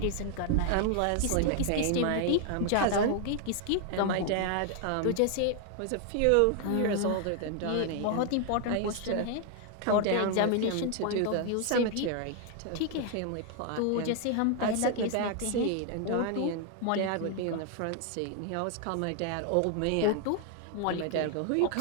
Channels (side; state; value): both; different; correlation 0.00